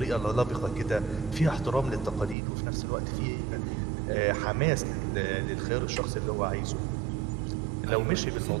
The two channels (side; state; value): left; drops out; at 2.4 s